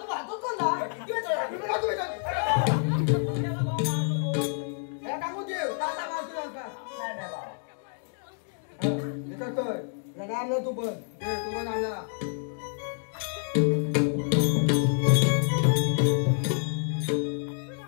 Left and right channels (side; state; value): right; silent; digital silence